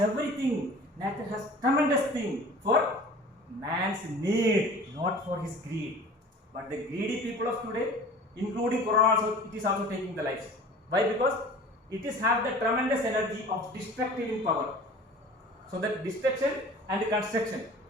Nature has tremendous thing for man's need, not for his greed. But the greedy people of today, including Corona also, it is also taking the lives. Why? Because it is have the tremendous energy of destructive in power. So that destruction and construction,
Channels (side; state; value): both; normal; correlation 0.43